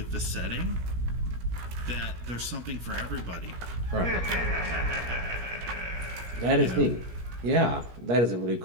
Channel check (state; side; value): late; left; 17 ms